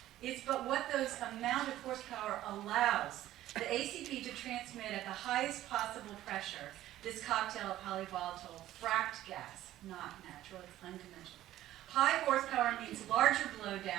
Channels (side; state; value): left; quieter; 13.9 dB